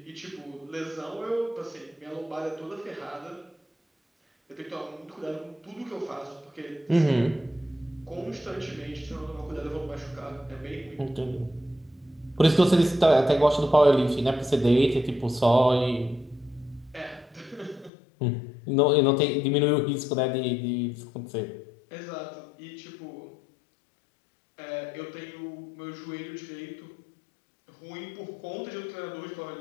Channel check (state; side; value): drops out; right; at 17.9 s